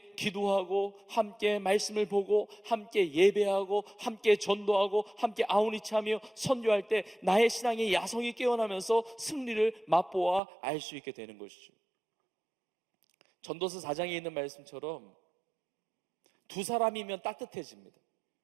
기도하고, 함께 말씀을 보고, 함께 예배하고, 함께 전도하고, 함께 아우니치하며 선교할 때 나의 신앙의 야성이 깨어나면서 승리를 맛보아 알 수 있게 되는 것이죠. 전도서 4장에 있는 말씀처럼 두 사람이면 따뜻해집니다.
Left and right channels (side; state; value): left; drops out; at 10.4 s